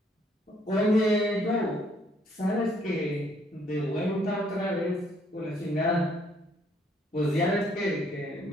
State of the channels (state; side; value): normal; both; correlation 0.66